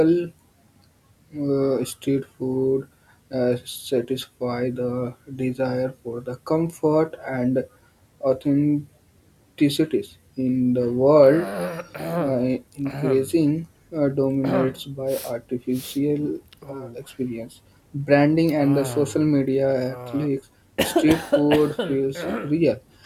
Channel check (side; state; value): both; identical; correlation 1.00